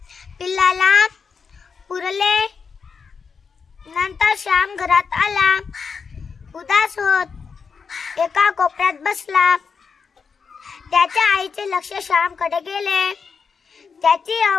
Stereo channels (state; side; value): quieter; right; 5.7 dB